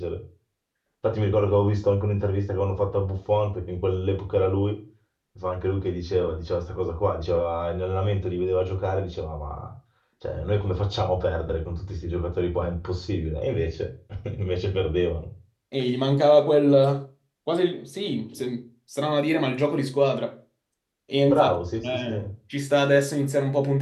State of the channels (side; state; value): both; identical; correlation 1.00